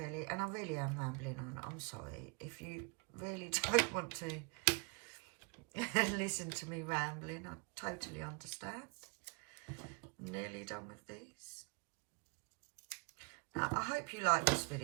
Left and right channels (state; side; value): quieter; left; 32.8 dB